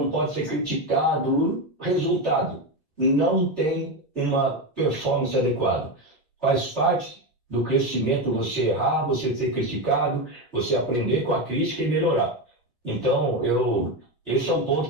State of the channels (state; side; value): normal; both; correlation 0.14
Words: pode ser criticado. Resultado, não tem uma performance adequada. Faz parte do crescimento você errar, você ser criticado, você aprender com a crítica e melhorar. Então, esse é um ponto